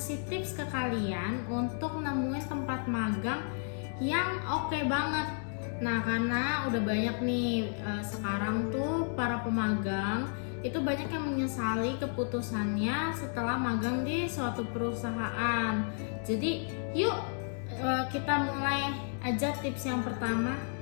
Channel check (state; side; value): silent; right; 56 dB below the other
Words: tips ke kalian untuk nemuin tempat magang yang oke banget. Nah, karena udah banyak nih sekarang tuh para pemagang itu banyak yang menyesali keputusannya setelah magang di suatu perusahaan. Jadi yuk kita mulai aja tips yang pertama.